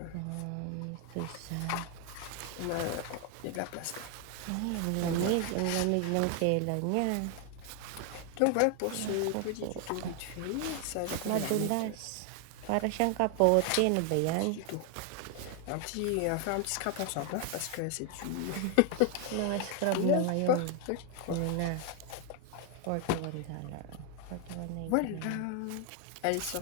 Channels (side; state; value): both; different; correlation 0.00